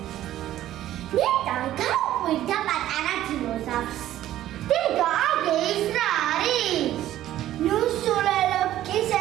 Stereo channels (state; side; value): quieter; left; 13.2 dB